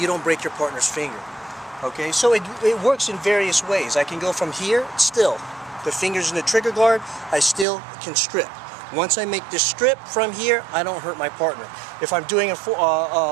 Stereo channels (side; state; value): left; drops out; at 7.7 s